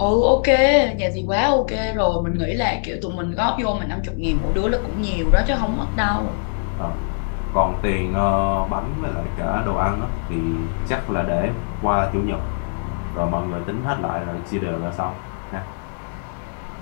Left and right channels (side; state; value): right; silent; digital silence